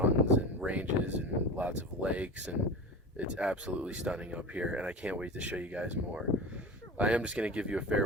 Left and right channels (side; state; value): both; normal; correlation 0.30